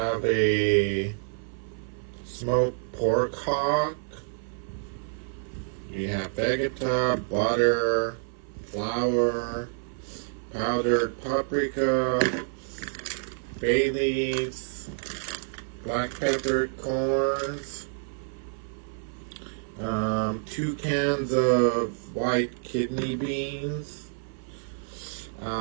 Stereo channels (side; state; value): left; silent; 55 dB below the other